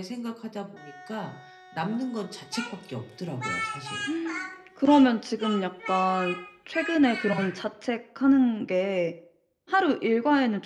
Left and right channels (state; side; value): identical; both; correlation 1.00